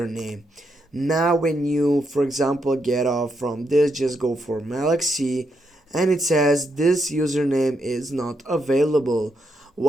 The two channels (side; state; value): both; normal; correlation 0.80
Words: Now when you, for example, get off from this, just go for Malaxy and it says this username is not available.